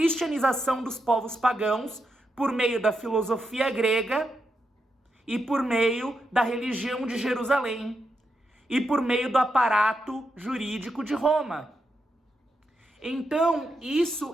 dos povos pagãos por meio da filosofia grega e por meio da religião de Jerusalém e por meio do aparato jurídico de Roma. Então, isso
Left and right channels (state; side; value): normal; both; correlation 0.84